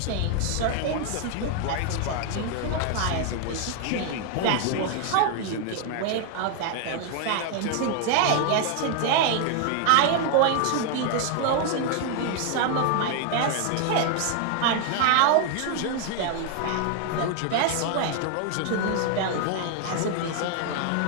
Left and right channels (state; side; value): different; both; correlation 0.00